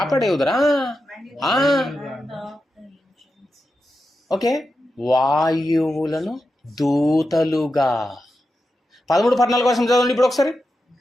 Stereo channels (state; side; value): normal; both; correlation 0.89